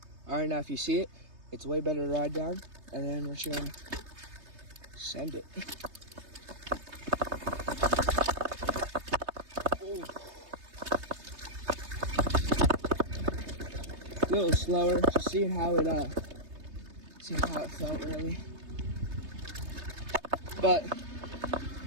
All right, now if you see it, it's way better to ride down, and then we're just gonna send it. Ooh. A little slower, just seeing how it felt really. But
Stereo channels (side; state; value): left; late; 3.3 ms